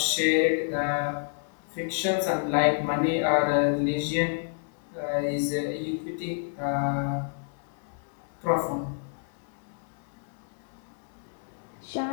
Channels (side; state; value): right; silent; 59 dB below the other